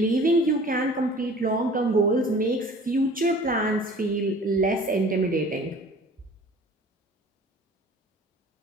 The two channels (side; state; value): both; normal; correlation 0.46